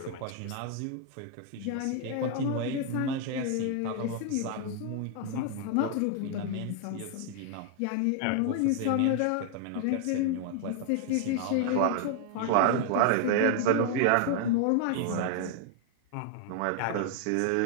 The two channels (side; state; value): both; different; correlation 0.00